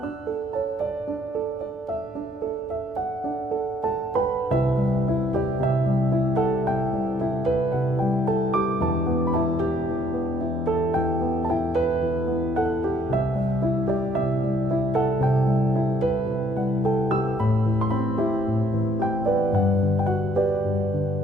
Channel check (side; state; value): both; normal; correlation 0.65